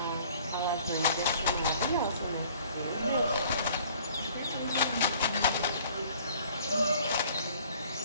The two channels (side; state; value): both; inverted; correlation -0.54